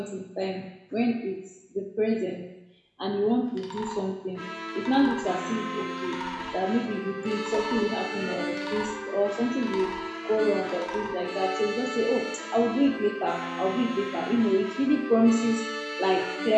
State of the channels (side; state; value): both; identical; correlation 1.00